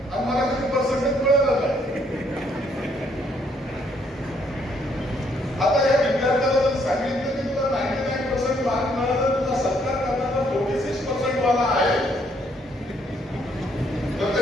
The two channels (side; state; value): both; normal; correlation 0.69